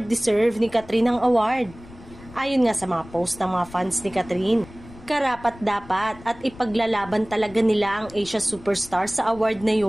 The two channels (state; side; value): noise; left; rumble, 20 dB below the sound